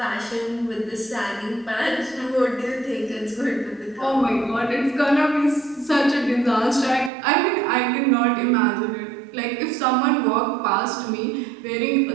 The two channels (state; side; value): drops out; left; at 7.1 s